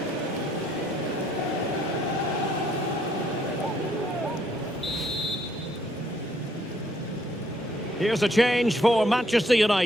Here's a change for Manchester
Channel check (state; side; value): normal; both; correlation 0.68